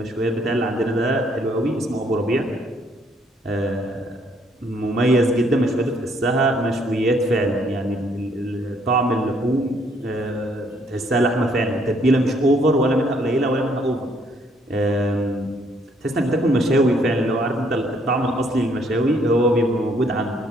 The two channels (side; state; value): both; normal; correlation 0.67